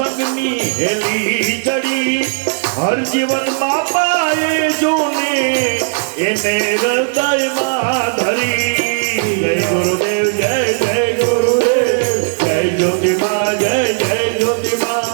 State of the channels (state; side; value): silent; left; 58 dB below the other